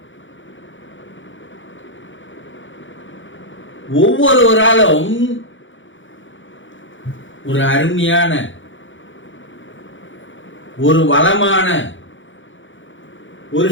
ஒவ்வொருவராலும் ஒரு அருமையான, ஒரு வளமான, ஒரு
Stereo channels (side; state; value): right; late; 0.56 ms